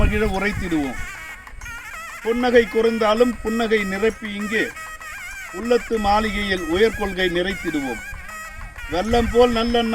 உரைத்திடுவோம். புன்னகை குறைந்தாலும் புன்னகை நிரப்பி இங்கே உள்ளத்து மாளிகையில் உயர்கொள்கை நிறைத்திடுவோம். வெள்ளம் போல்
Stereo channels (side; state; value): both; identical; correlation 1.00